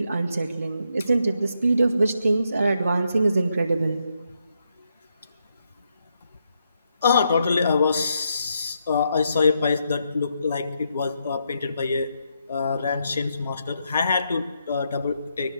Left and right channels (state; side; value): inverted; both; correlation -0.80